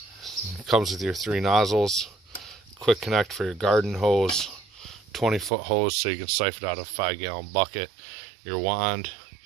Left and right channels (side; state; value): left; drops out; at 5.5 s